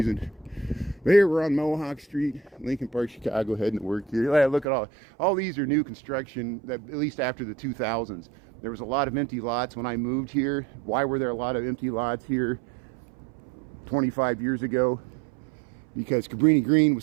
But here we're on Mohawk Street, Lincoln Park, Chicago, heading to work here. Yeah, look at all these are new construction, that at least after the 2000s. There was a lot of empty lots when I moved here. Why were there a lot of empty lots here 25 years ago? Because Cabrini Green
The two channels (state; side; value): drops out; left; at 4.7 s